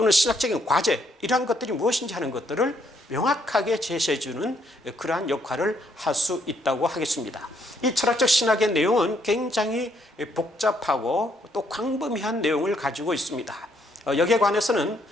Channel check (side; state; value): both; normal; correlation 0.71